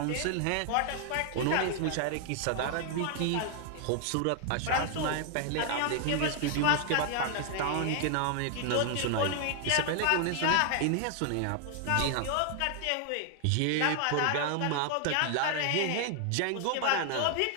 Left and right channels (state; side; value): different; both; correlation 0.00